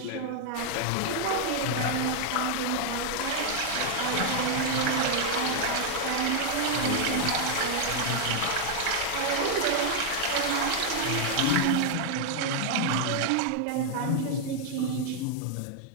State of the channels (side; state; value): both; different; correlation 0.00